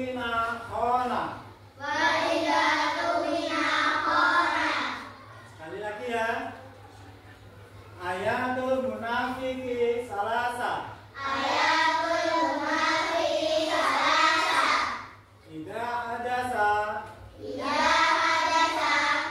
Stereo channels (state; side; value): identical; both; correlation 1.00